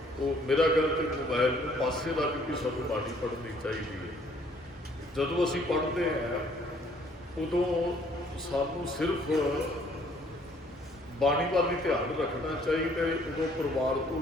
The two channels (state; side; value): normal; both; correlation 0.62